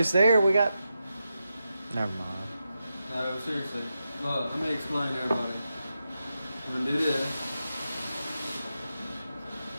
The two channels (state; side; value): inverted; both; correlation -0.88